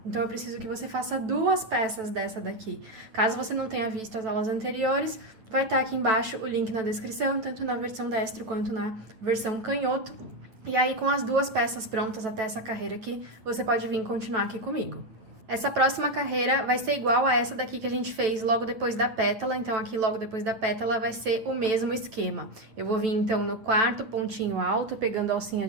Então eu preciso que você faça 2 peças dessa daqui. Caso você não tenha visto as aulas anteriores, vai estar aqui embaixo o link na descrição, tanto na versão destro quanto na versão canhoto. E aí com as 2 peças prontas até essa carreira aqui, você pode vir continuar aqui comigo. Essa próxima carreira vai ser igual a essa daqui que a gente fez logo depois da pétala, então aqui logo depois da pétala vai ser o mesmo esquema. Eu vou vir então no 4º pontinho alto, pegando a alcinha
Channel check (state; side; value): late; left; 8.8 ms